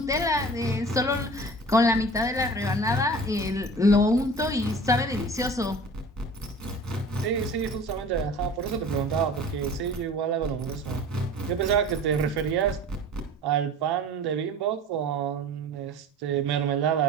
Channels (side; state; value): both; normal; correlation 0.41